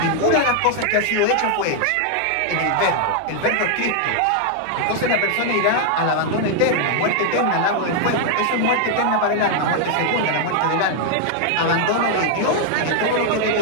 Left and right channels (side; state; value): both; different; correlation 0.00